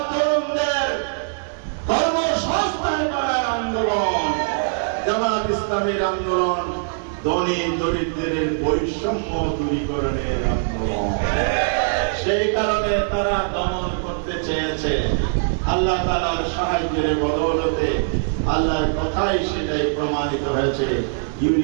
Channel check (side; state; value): left; silent; 64 dB below the other